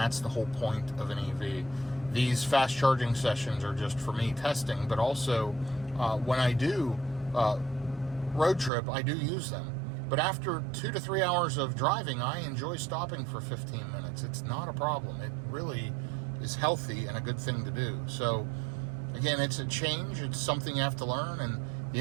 the whole point of an EV. These fast charging sessions are just for me testing, but also when I do road trip, I do use them. But after 2 to 3 hours of driving, I enjoy stopping for 15 minutes. It's not a problem. It really is healthy and a good thing to do. So again, it's a change. It's something you have to learn, and the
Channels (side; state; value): left; drops out; at 8.7 s